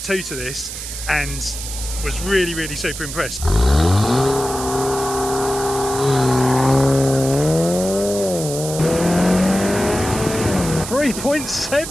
2 to this and was really super impressed.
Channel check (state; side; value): noise; right; hiss, 8 dB below the sound